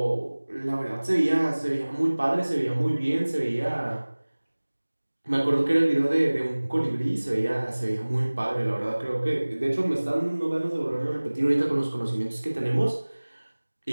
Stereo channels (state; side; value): inverted; both; correlation -1.00